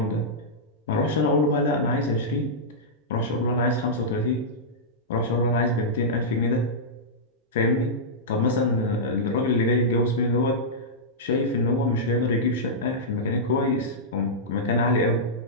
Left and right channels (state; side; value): normal; both; correlation -0.11